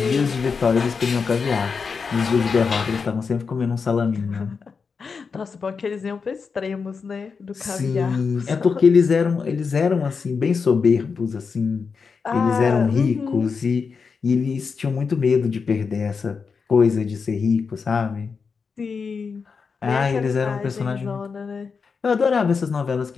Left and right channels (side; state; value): right; quieter; 5.3 dB